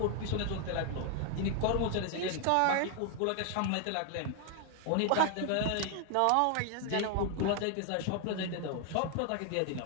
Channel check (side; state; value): both; different; correlation 0.00